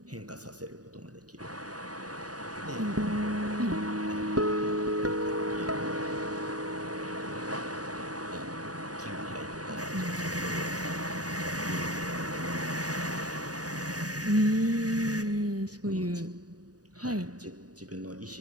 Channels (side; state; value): left; late; 0.68 ms